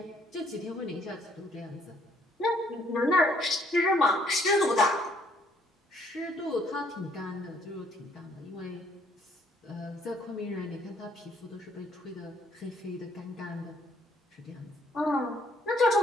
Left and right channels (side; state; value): both; normal; correlation 0.65